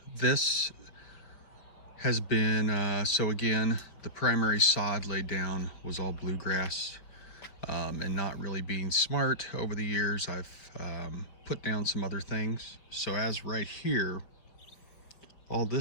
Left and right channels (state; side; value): late; right; 5.1 ms